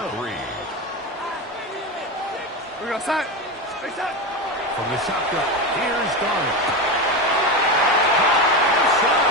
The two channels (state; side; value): normal; both; correlation 0.18